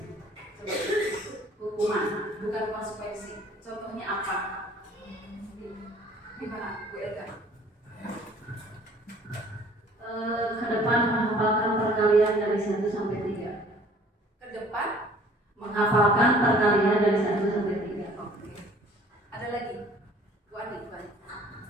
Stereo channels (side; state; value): both; normal; correlation 0.53